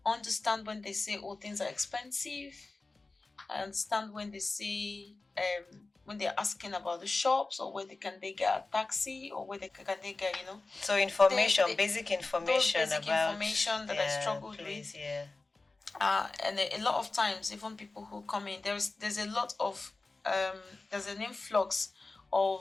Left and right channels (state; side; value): quieter; right; 3.4 dB